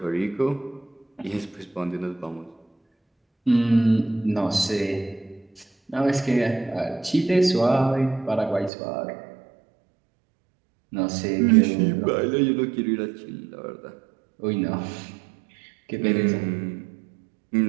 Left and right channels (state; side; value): drops out; left; at 8.7 s